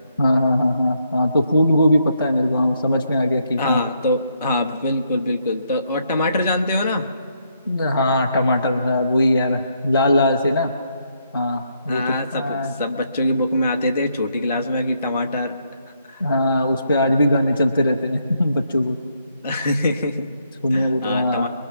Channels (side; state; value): both; inverted; correlation -0.75